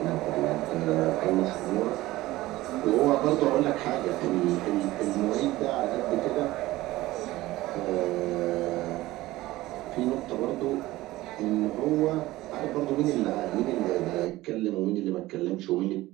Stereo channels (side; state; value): left; quieter; 17.6 dB